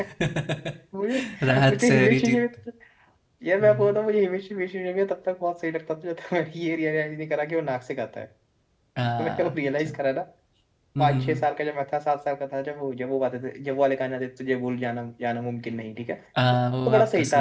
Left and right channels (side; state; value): both; identical; correlation 1.00